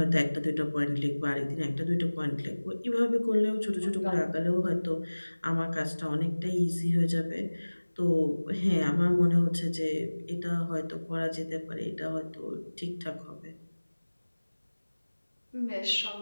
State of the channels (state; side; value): inverted; both; correlation -1.00